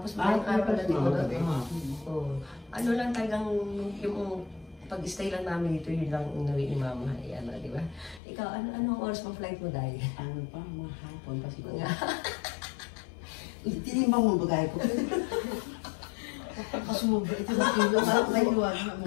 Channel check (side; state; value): right; drops out; at 8.2 s